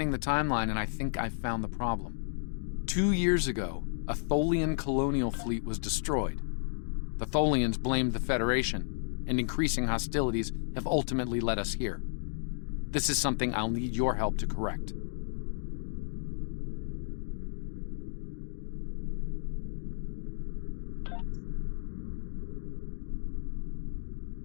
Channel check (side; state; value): right; silent; digital silence